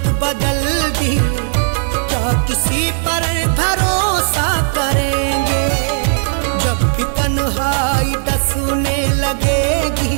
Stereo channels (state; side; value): silent; left; digital silence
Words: बदल दी, क्या किसी पर भरोसा करेंगे? जब भी तन्हाई डसने लगेगी